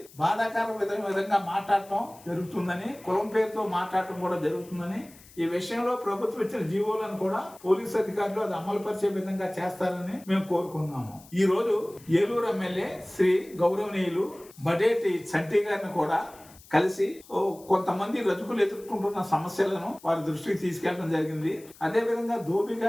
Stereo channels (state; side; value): noise; left; hiss, 23 dB below the sound